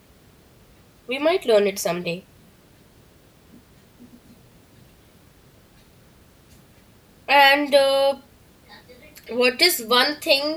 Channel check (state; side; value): identical; both; correlation 1.00